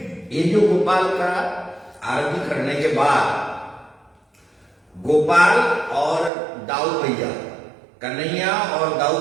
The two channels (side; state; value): left; drops out; at 6.3 s